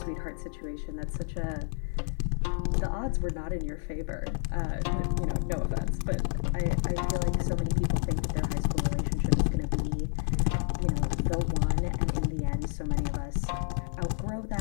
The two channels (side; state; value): right; silent; 58 dB below the other